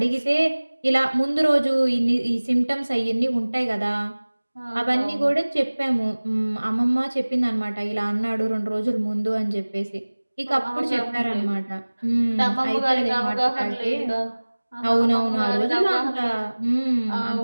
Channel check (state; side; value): inverted; both; correlation -1.00